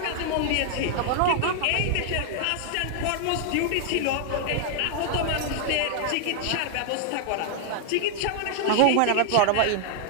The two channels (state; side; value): different; both; correlation 0.00